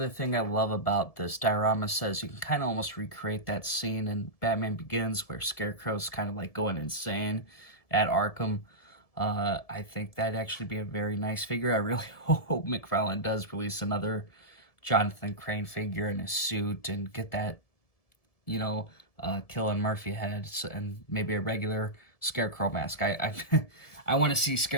thing I love about this diorama says you can kind of almost recreate that scene in Batman Begins where Scarecrow's kind of like going insane at Arkham. I think that'd actually be a very nice figure. I really hope McFarlane does release another Jonathan Crane figure in his suit and get that, Killian Murphy head and maybe a regular Scarecrow mask. I want to see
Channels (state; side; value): late; right; 1.7 ms